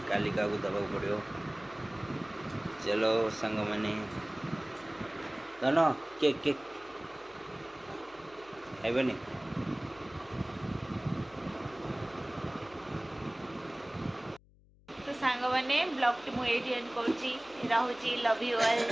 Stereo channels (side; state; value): left; noise; hum, 27 dB below the sound